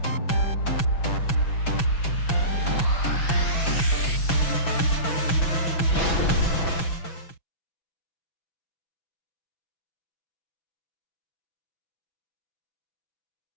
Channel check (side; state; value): right; late; 6.1 ms